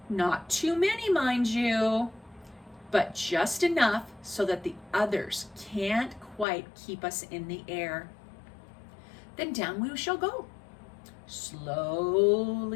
Not too many, mind you, but just enough so that the others can't quite keep us in the air. Then down we shall go,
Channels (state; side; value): drops out; right; at 6.5 s